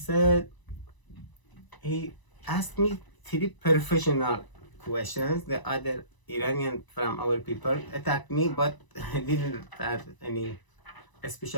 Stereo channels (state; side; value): late; right; 1.0 ms